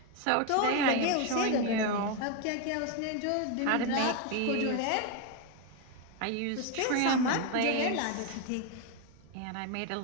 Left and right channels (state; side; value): different; both; correlation 0.02